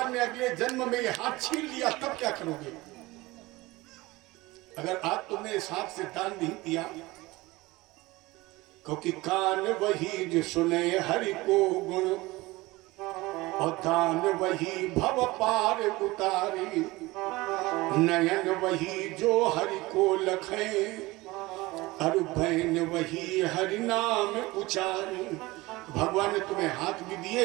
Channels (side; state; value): left; quieter; 20.8 dB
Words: ने अगले जन्म में ये हाथ छीन लिया तब क्या करोगे? अगर आज तुमने इस हाथ से दान नहीं दिया, क्योंकि कान वही जो सुने हरि को गुण और दान वही भव पार उतारी, नयन वही जो हरि को लखे और भैन वही हरि नाम उचारी। भगवान ने तुम्हें हाथ भी दिए,